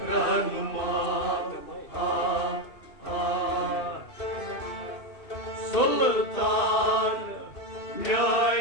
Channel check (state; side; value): late; right; 2.6 ms